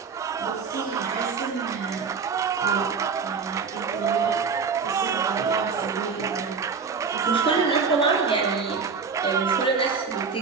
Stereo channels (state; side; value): quieter; left; 5.4 dB